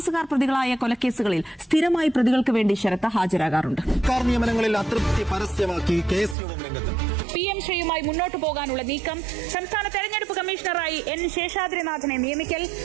പ്രതികളായ കൊലക്കേസുകളിൽ സ്ഥിരമായി പ്രതികൾക്ക് വേണ്ടി ശരത് ഹാജരാകാറുണ്ട്. സർക്കാർ നിയമനങ്ങളിൽ അതൃപ്തി പരസ്യമാക്കി KS രംഗത്ത്. PM ശ്രീയുമായി മുന്നോട്ടു പോകാനുള്ള നീക്കം, സംസ്ഥാന തെരഞ്ഞെടുപ്പ് കമ്മീഷണറായി N ശേഷാദ്രിനാഥനെ നിയമിക്കൽ,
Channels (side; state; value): left; drops out; at 6.4 s